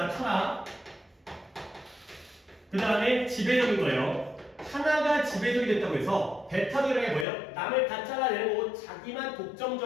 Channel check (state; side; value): drops out; right; at 7.2 s